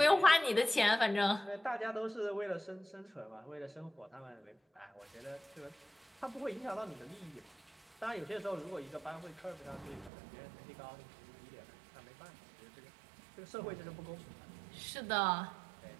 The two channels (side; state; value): left; drops out; at 10.1 s